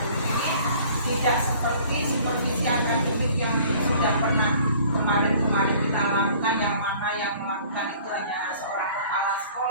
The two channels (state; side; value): inverted; both; correlation -0.52